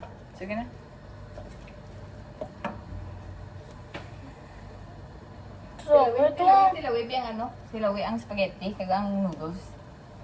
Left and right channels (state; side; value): identical; both; correlation 1.00